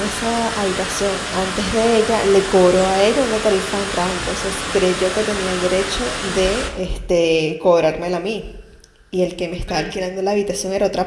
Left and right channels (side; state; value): both; identical; correlation 1.00